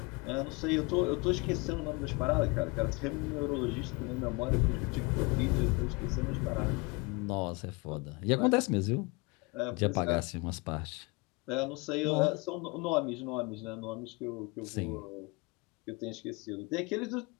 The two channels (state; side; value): quieter; right; 27.3 dB